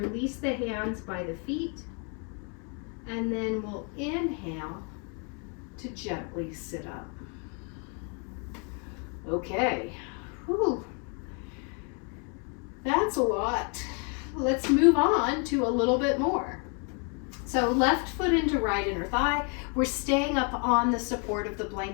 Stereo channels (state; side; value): quieter; right; 37.7 dB